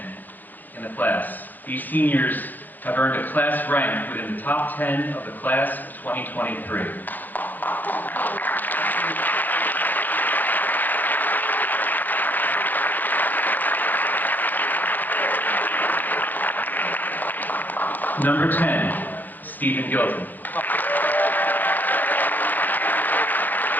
in the class. These seniors have earned a class rank within the top 10 of the class of 2023. Number 10, Stephen Gilton.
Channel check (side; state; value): right; late; 0.085 ms